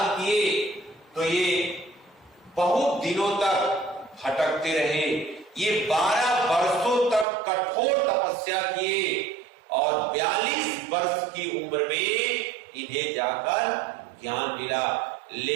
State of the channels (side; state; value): left; drops out; at 7.2 s